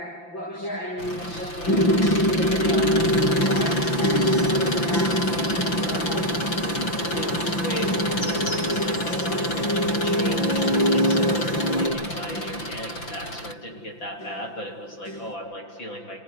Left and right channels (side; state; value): right; late; 5.9 ms